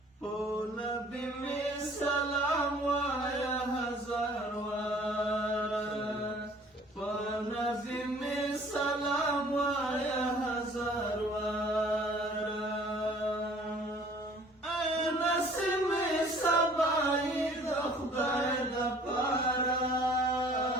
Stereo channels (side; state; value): both; normal; correlation 0.53